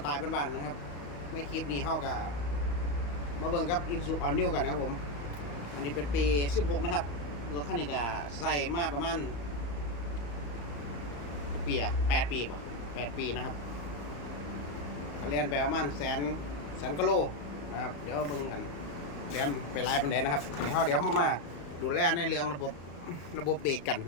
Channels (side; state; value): right; late; 35 ms